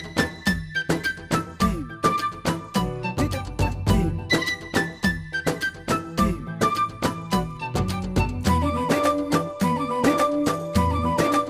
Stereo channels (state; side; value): identical; both; correlation 1.00